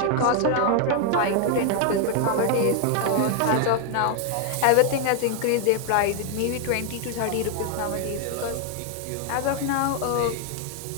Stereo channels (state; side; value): different; both; correlation 0.00